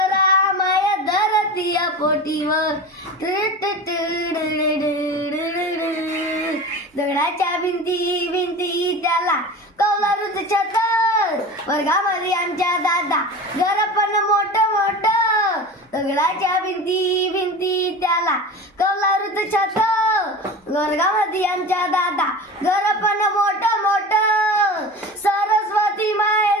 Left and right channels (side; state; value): both; normal; correlation 0.32